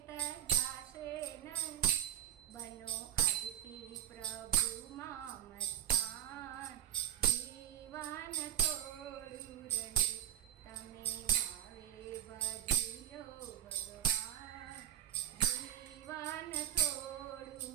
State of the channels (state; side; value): quieter; left; 12.0 dB